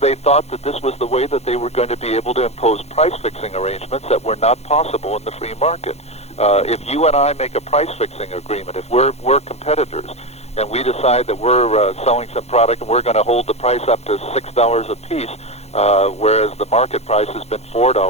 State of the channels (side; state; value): right; late; 0.31 ms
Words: thought that this was the way that they were going to be able to impose price-fixing arrangements that were not possible in the free market. If you and I make a price-fixing agreement, if we're competitors, and we decide that we're selling some product and we're going to hold the price up to $6 a piece, whereas the market price has been